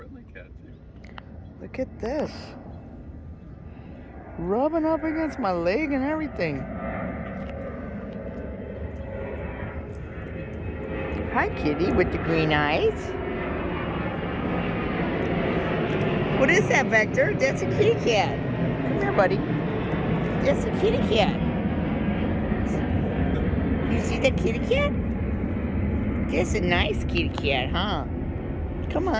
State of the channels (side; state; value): both; identical; correlation 1.00